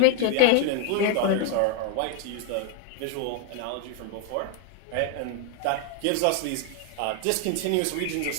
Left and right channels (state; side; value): different; both; correlation 0.01